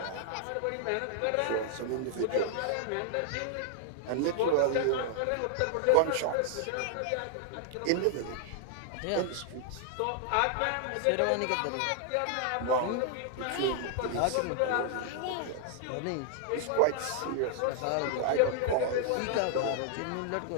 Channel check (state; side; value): different; both; correlation 0.00